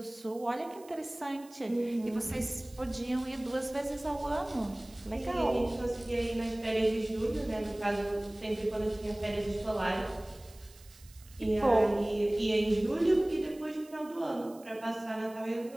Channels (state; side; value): noise; right; hiss, 24 dB below the sound